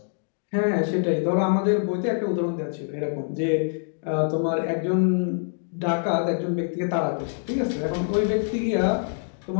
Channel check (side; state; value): right; silent; 62 dB below the other